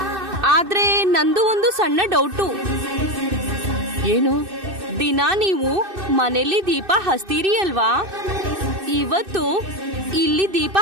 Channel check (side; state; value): left; late; 2.6 ms